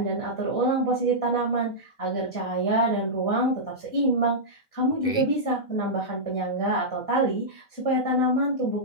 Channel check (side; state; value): right; late; 2.0 ms